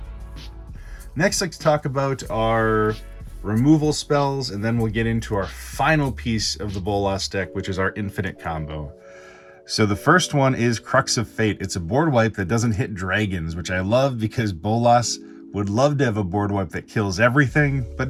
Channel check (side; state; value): both; identical; correlation 1.00